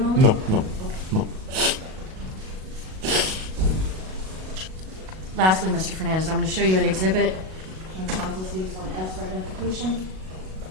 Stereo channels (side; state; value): left; late; 37 ms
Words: No. Lastly, Mr. Fernandez, I'm going to show you an exhibit on council states 1S for identification.